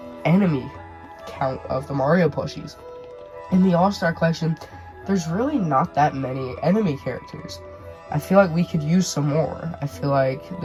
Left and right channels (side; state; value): both; identical; correlation 1.00